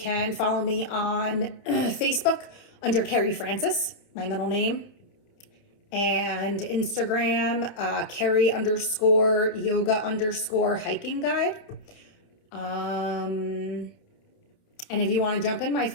follow me on Facebook under Carrie Francis, my middle name, and Instagram, Carrie_yoga_hiking guide. And if you want to jump in my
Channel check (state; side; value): late; right; 29 ms